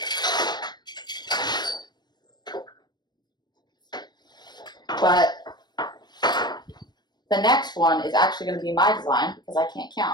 But the next one is actually going to be my design because I can't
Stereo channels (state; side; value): late; right; 0.21 ms